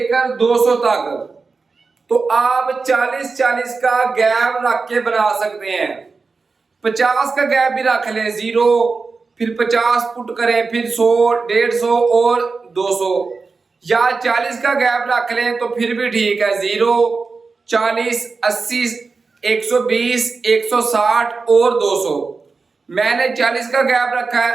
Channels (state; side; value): quieter; left; 4.4 dB